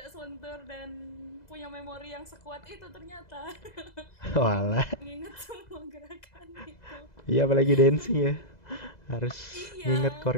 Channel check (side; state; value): right; late; 2.0 ms